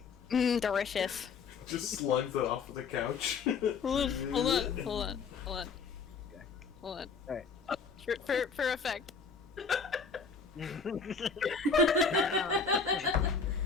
Delicious. Just slugs it off of the couch. Hold on. Okay. Hold on. Alright. For effect.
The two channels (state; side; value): quieter; right; 5.2 dB